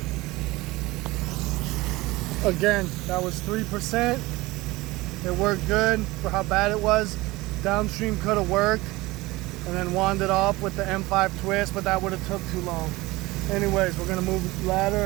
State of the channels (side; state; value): left; quieter; 20.6 dB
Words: Again, that was 3%. It worked good for how bad it was. Downstream could have worked and then wanded off with the M5 twist, but that would have took too long. Anyways, we're gonna move the ladder